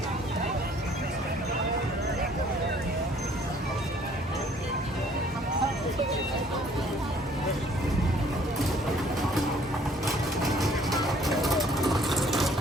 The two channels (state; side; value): normal; both; correlation 0.58